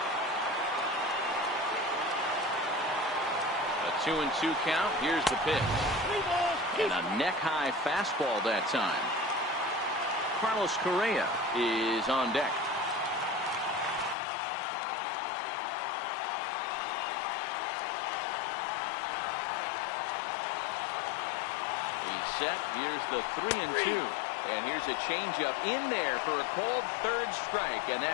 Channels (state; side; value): drops out; right; at 14.2 s